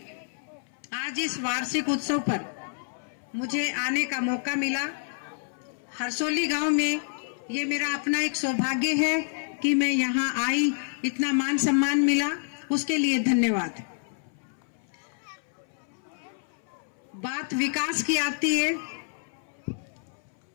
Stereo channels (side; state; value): right; silent; 59 dB below the other